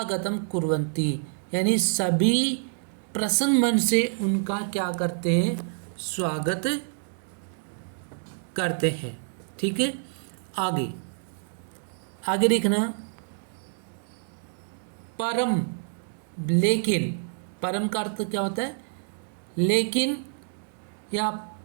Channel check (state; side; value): silent; left; 60 dB below the other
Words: कुर्वन्ति यानी सभी प्रसन्न मन से उनका क्या करते हैं? स्वागत करते हैं। ठीक है। आगे आगे देखना, परम, लेकिन, परम का अर्थ क्या होता है? लेकिन या